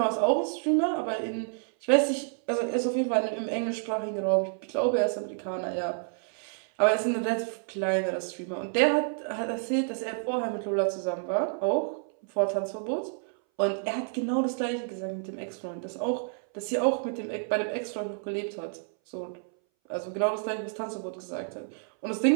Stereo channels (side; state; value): left; silent; 58 dB below the other